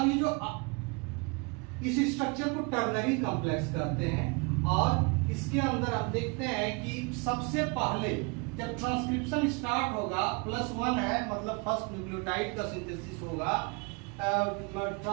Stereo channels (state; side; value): quieter; left; 30.4 dB